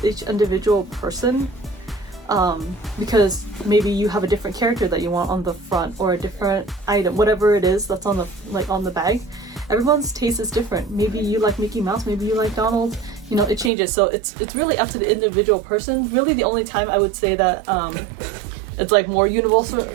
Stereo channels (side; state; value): left; drops out; at 13.7 s